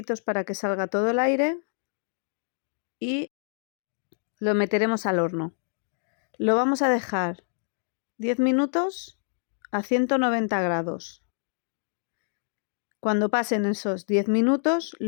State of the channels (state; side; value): silent; right; digital silence